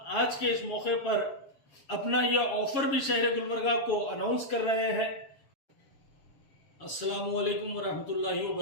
आज के इस मौके पर अपना यह ऑफर भी शहर गुलबर्गा को अनाउंस कर रहे हैं। अस्सलामु अलैकुम वरहमतुल्लाहि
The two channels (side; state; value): right; late; 7.2 ms